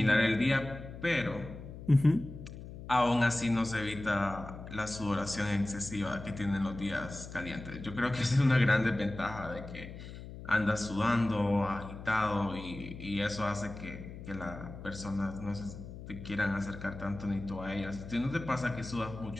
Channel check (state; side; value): noise; left; hum, 12 dB below the sound